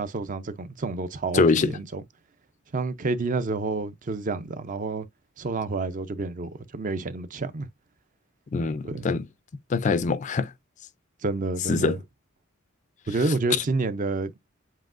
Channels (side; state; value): both; normal; correlation 0.41